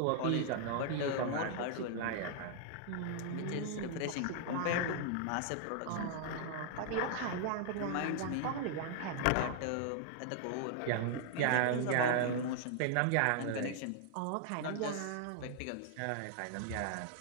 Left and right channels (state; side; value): different; both; correlation 0.00